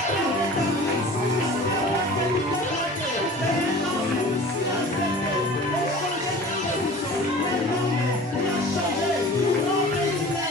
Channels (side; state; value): both; normal; correlation 0.41